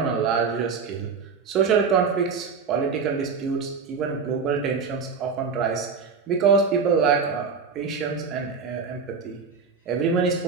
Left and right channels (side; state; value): left; quieter; 5.5 dB